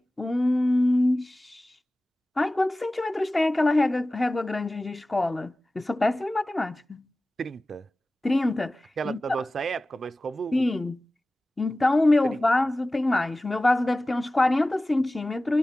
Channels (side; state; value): both; normal; correlation 0.97